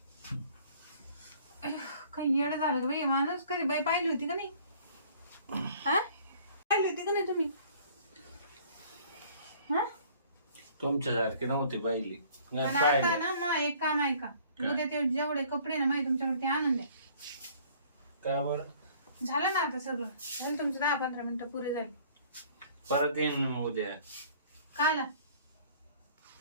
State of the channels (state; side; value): inverted; both; correlation -0.55